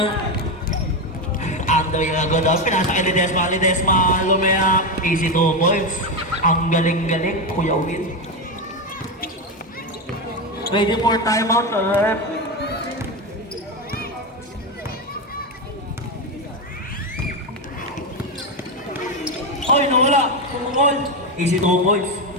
Ando yung agad daw, pinasa kay Ledesma, lumaya, easy 2 points. Ang galing-galing, Kuya Win. Ready for timeout, rep. Oy, nawala. Pumukol. Easy 2 points.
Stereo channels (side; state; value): both; normal; correlation 0.11